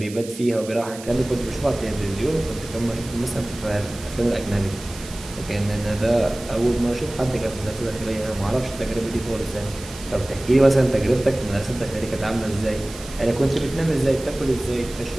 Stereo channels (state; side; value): noise; right; hiss, 15 dB below the sound